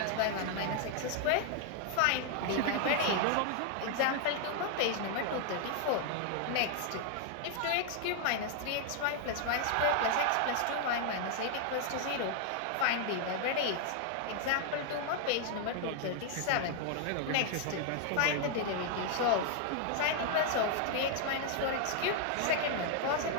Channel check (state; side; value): different; both; correlation 0.00